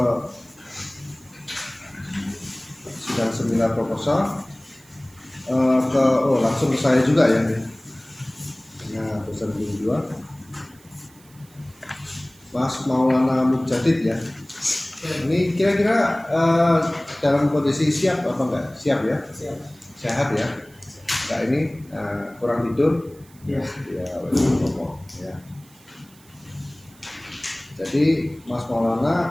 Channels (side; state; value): right; noise; hiss, 27 dB below the sound